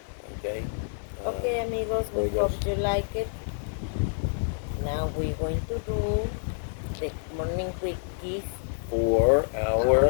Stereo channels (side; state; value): right; silent; digital silence